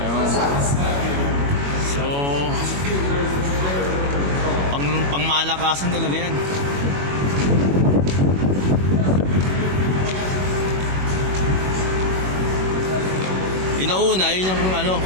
So, malakasan talaga yan. Inauna, yun yung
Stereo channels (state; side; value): late; left; 21 ms